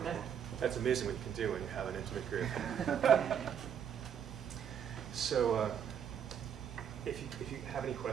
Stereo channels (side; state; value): left; quieter; 8.4 dB